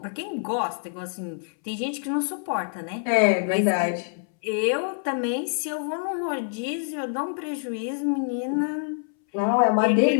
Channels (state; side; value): silent; right; 61 dB below the other